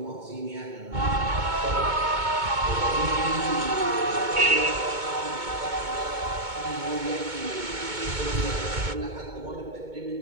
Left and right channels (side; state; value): left; late; 2.2 ms